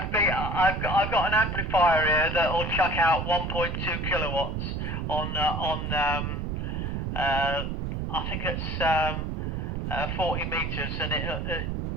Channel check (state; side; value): noise; right; rumble, 2 dB below the sound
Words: got an amplifier here that will chuck out 1.2 kilowatts on I think it's 40 meters, and